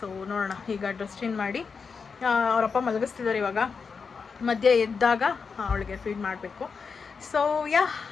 ಸೊ ನೋಡೋಣ, ಈಗ ಡ್ರೆಸ್ ಚೇಂಜ್ ಮಾಡಿ ಅವರಪ್ಪ ಮಲಗಿಸ್ತಿದ್ದಾರೆ. ಇವಾಗ ಮಧ್ಯೆ ಎದ್ದಾಗ ಅವಳಿಗೆ ಫೀಡ್ ಮಾಡಬೇಕು. ಸೊ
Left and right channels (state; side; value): quieter; right; 5.4 dB